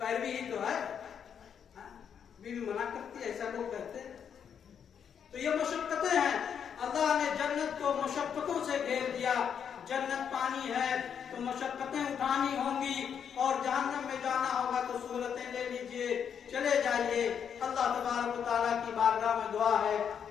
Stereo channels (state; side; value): quieter; right; 7.8 dB